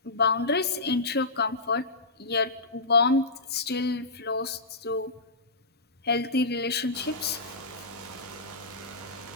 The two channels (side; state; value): right; quieter; 3.3 dB